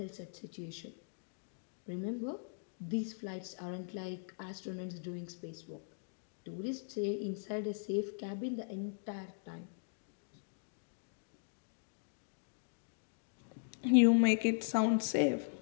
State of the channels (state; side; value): silent; right; digital silence